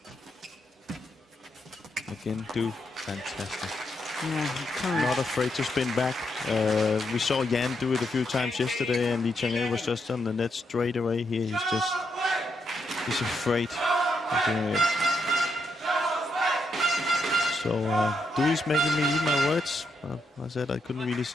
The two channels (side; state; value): both; normal; correlation 0.80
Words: Again, fantastic. Yeah, Not afraid to spin back. We saw Jan do it a few times yesterday, and LeeChongWei was just on the net straight away. Here he's afraid of doing it. So Dui's making me eat my words. I said I couldn't really